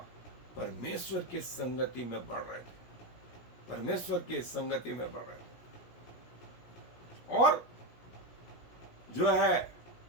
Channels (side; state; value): right; late; 17 ms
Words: परमेश्वर की संगति में बढ़ रहे थे, और जो है